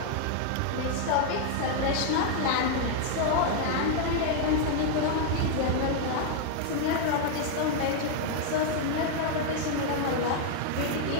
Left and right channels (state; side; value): different; both; correlation 0.00